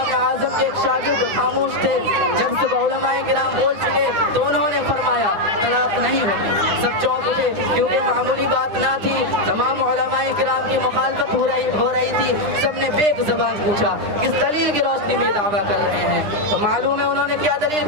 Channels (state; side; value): late; left; 9.9 ms